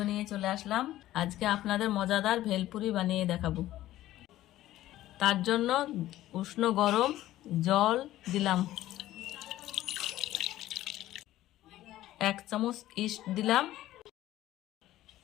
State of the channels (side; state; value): right; quieter; 14.6 dB